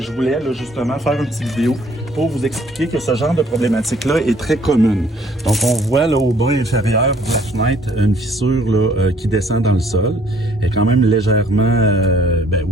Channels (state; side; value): normal; both; correlation 0.60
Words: je voulais justement faire une petite vidéo pour vous expliquer que ce genre de problématique-là est très commune. Donc, on voit là au bas inférieur de la fenêtre une fissure là, qui descend dans le sol. Elle est quand même légèrement,